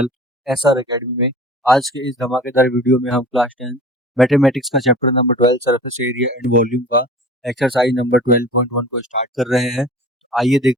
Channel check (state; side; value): normal; both; correlation 0.41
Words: एसआर अकेडमी में। आज के इस धमाकेदार वीडियो में हम क्लास 10 मैथमेटिक्स का chapter number 12 surface area and volume का एक्सरसाइज नंबर 12.1 को स्टार्ट कर रहे हैं। आइए